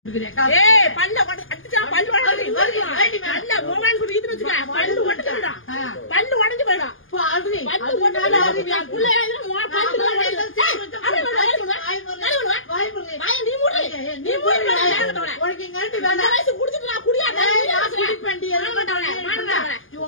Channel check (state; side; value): late; right; 0.58 ms